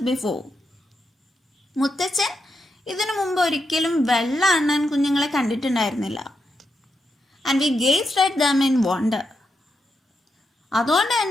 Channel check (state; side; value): normal; both; correlation 0.84